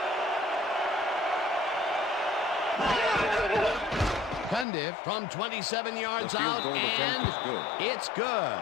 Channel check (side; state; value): right; drops out; at 4.7 s